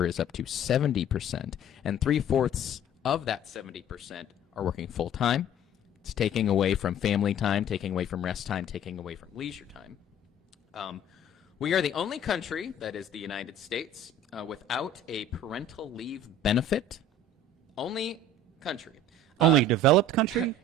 is up to 70%, and 3/4 of that 70% are working full-time. It's taking away from family time, taking away from rest time, taking away from leisure time. We are the only country, that is the United States, without a parental leave benefit. Only country. Only developed country?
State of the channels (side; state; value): both; normal; correlation 0.47